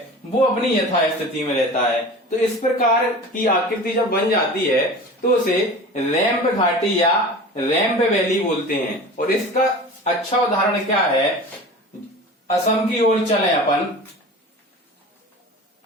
वो अपनी यथा स्थिति में रहता है। तो इस प्रकार की आकृति जब बन जाती है तो उसे रैम्प घाटी या रैम्प वैली बोलते हैं। और इसका अच्छा उदाहरण क्या है, असम की ओर चलें अपन,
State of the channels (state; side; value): normal; both; correlation 0.36